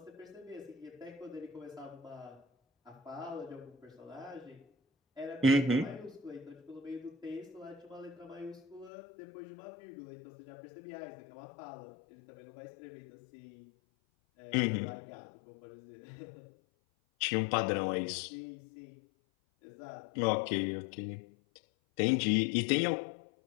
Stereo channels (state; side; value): drops out; right; at 8.9 s